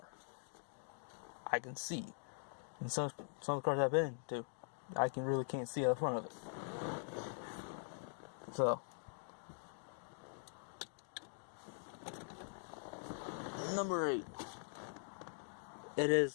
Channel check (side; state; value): right; silent; digital silence